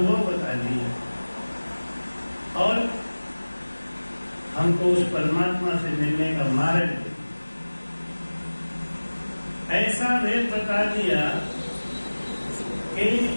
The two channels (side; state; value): both; inverted; correlation -1.00